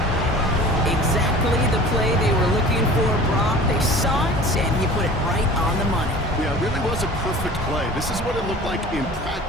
Exactly the play they were looking for, Brock. They saw it, and he put it right on the money. Yeah, it really was a perfect play. This is what it looked like in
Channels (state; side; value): normal; both; correlation 0.42